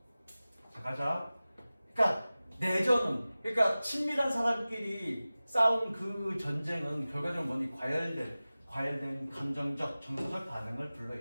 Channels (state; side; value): inverted; both; correlation -0.97